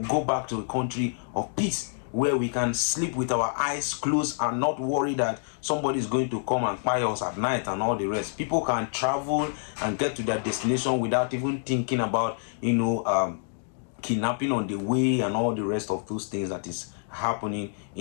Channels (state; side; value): silent; right; digital silence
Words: go back to a country of peace, where we can sleep with our eyes closed and not worry that somebody is going to come and spy us at night and all the rest. People can travel and get to their destination without even thinking about, kidnapping on the way and all the rest of those things that is happening